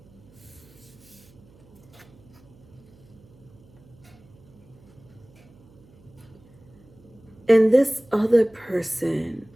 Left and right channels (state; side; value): noise; right; hum, 26 dB below the sound